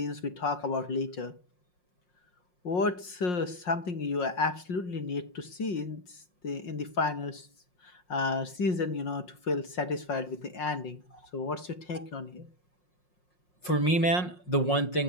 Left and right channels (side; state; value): right; late; 5.6 ms